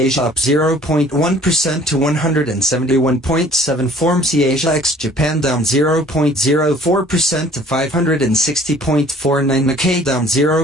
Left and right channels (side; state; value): both; normal; correlation 0.53